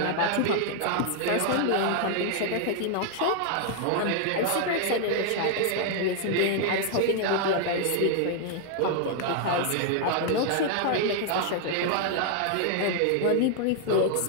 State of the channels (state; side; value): different; both; correlation 0.00